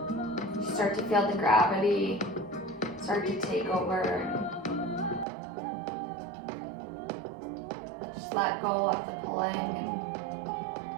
Start to feel the gravity start to take over. Just let go of the pulling, and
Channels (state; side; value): drops out; left; at 5.2 s